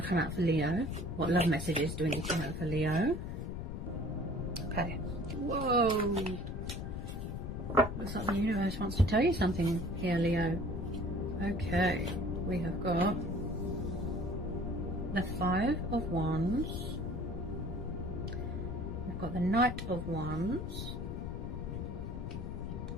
to come out for Leo? What love messages do we need to know for Leo? Okay, whoa, looks like the universe wants to tell you something here, Leo. Okay, we have got the Five of Wands, we've got the Knight of Wands,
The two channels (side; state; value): left; noise; rumble, 5 dB below the sound